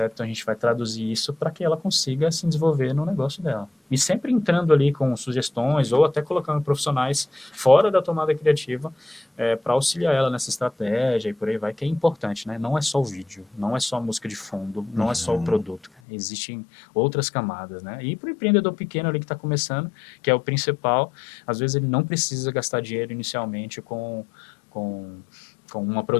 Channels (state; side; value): drops out; right; at 15.9 s